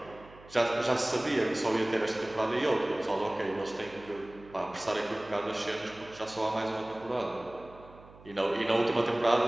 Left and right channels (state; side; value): noise; right; hum, 22 dB below the sound